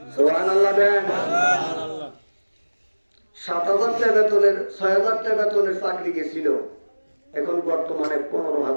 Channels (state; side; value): inverted; both; correlation -1.00